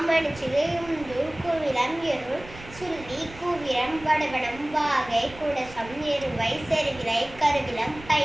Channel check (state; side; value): noise; right; rumble, 18 dB below the sound